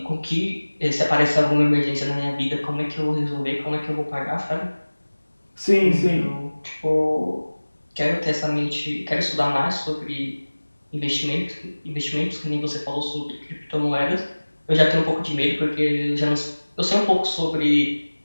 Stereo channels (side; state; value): both; inverted; correlation -1.00